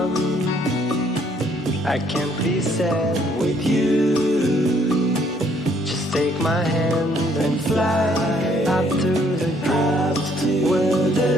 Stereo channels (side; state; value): both; normal; correlation 0.65